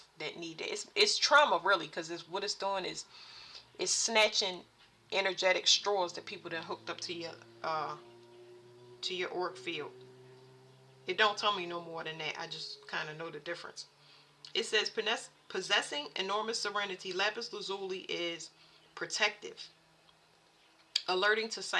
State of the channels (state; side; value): identical; both; correlation 1.00